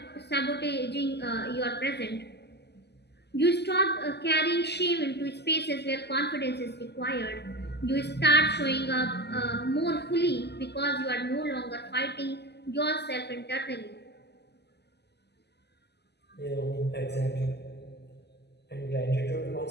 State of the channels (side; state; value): right; late; 0.49 ms